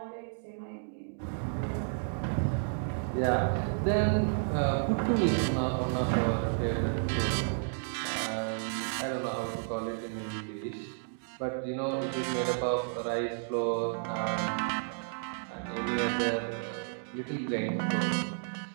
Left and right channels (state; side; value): silent; left; digital silence